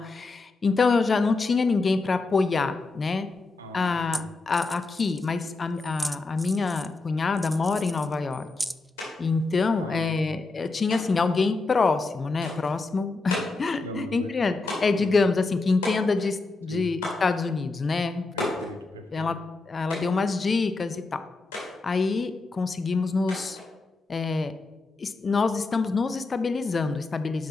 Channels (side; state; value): right; quieter; 3.6 dB